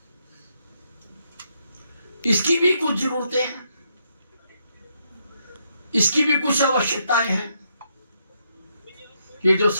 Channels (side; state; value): both; inverted; correlation -0.77